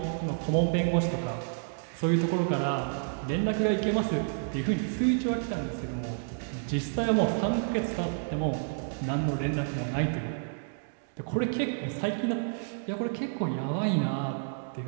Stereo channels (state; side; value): silent; left; digital silence